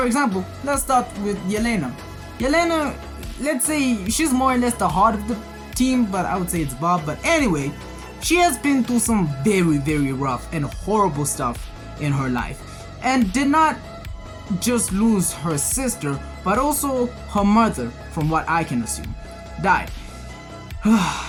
example, let's start with Yelena. Yelena, let's say she's more or less the heart of the team, but I would say it's Bob. But anyway, she has been through some very, very rough and horrible stuff in her life, and did not just lose her sister, but also her mother, from what I can assume, died.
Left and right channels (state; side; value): identical; both; correlation 1.00